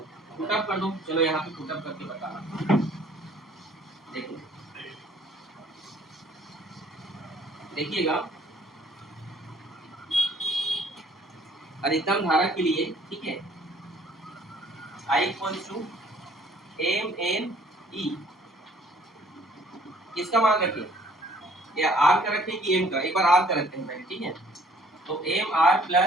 पुटअप कर दो। चलो यहाँ पे पुटअप करके बताना, देखो देखिएगा। अधिकतम धारा के लिए, ठीक है, I equals to M N E, किसका मान रखें, या आर का रखें कि एम का? एक बार आर का रखते हैं पहले, ठीक है। तो एम आर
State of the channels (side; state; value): both; normal; correlation 0.58